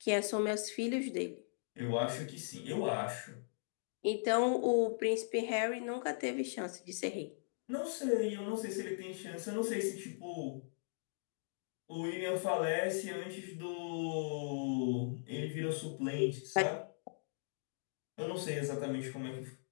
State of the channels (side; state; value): right; silent; digital silence